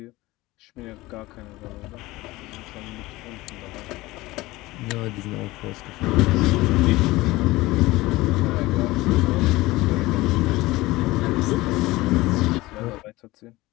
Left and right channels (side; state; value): right; quieter; 19.5 dB